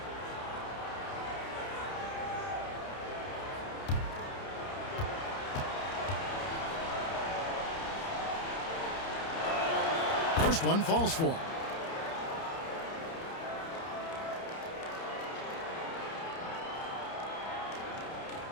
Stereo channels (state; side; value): late; right; 30 ms